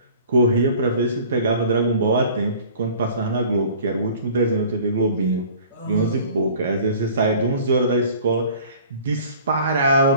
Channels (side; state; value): both; inverted; correlation -0.48